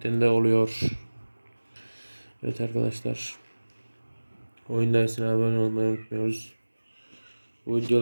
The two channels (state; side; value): inverted; both; correlation -1.00